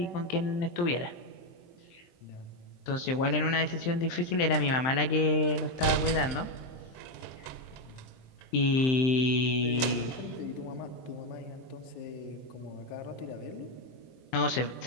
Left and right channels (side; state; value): right; late; 23 ms